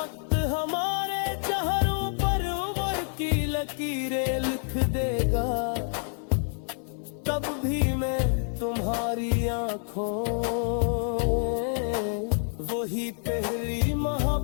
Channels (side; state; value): right; silent; 59 dB below the other